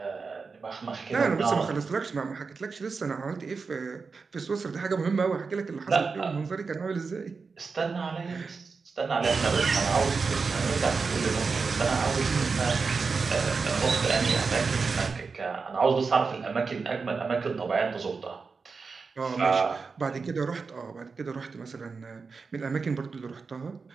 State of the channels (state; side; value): quieter; left; 4.8 dB